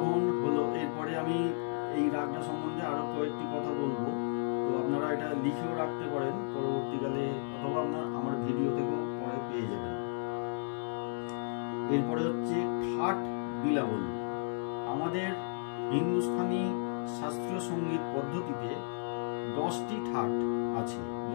হলো। এরপরে আমি এই রাগটা সম্বন্ধে আরো কয়েকটি কথা বলবো, তো আপনারা এটা লিখেও রাখতে পারেন পরবর্তীকালে, অথবা আপনার আমার ভিডিও থেকেও পরে পেয়ে যাবেন। এরপরে হচ্ছে ঠাট বিলাবল। আমাদের হিন্দুস্তানি শাস্ত্রীয় সঙ্গীত পদ্ধতিতে 10টি ঠাট আছে,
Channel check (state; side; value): silent; right; 55 dB below the other